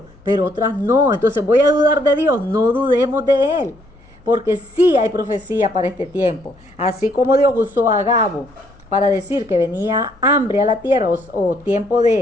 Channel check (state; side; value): noise; left; hum, 29 dB below the sound